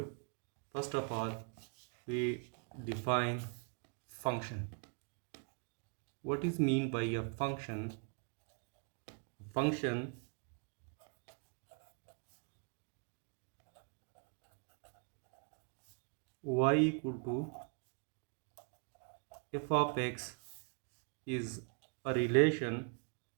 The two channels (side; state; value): left; quieter; 39.4 dB